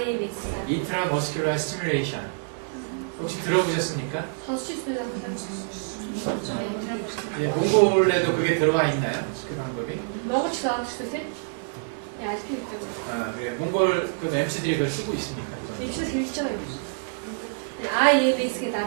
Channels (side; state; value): left; silent; 61 dB below the other